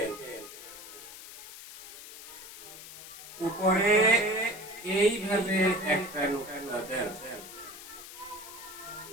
উপরে এইভাবে একটা নোকতা দেন,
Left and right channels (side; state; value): left; noise; hiss, 14 dB below the sound